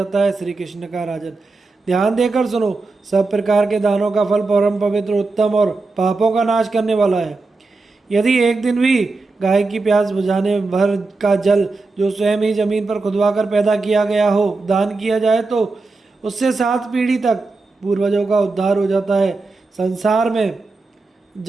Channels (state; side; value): quieter; left; 3.6 dB